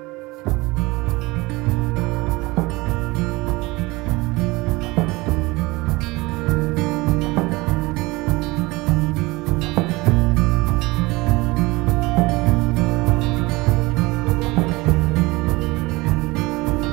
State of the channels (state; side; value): quieter; left; 22.5 dB